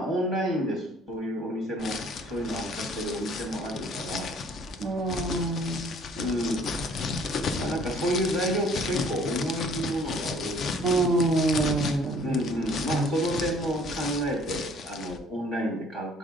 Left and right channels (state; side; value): normal; both; correlation 0.56